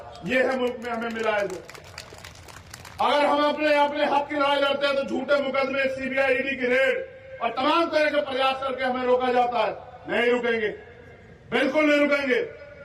ये है मुल्क में हमें मिला है। अगर हम अपने हक की लड़ाई लड़ते हैं तो झूठे मुकदमे, सीबीआई, ईडी की रेड और तमाम तरह के प्रयास करके हमें रोका जाता है। नहीं रुकेंगे, बिल्कुल नहीं रुकेंगे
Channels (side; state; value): both; identical; correlation 1.00